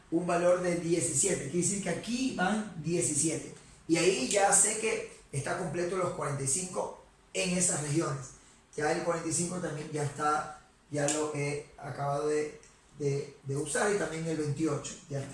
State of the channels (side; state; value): both; identical; correlation 1.00